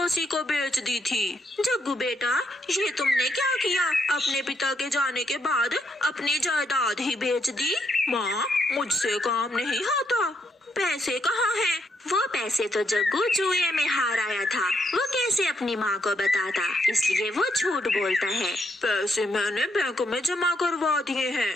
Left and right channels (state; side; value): normal; both; correlation 0.76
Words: को बेच दी थी। जग्गू बेटा, ये तुमने क्या किया? अपने पिता के जाने के बाद अपनी जायदाद ही बेच दी। माँ, मुझसे काम नहीं होता। पैसे कहाँ हैं? वो पैसे तो जग्गू जुए में हार आया था, वो कैसे अपनी माँ को बताता, इसलिए वो झूठ बोलता है। पैसे मैंने बैंक में जमा करवा दिए